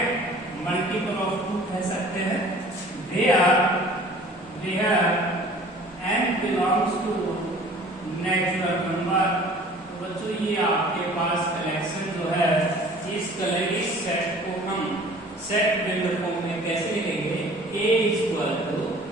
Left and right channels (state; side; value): normal; both; correlation 0.48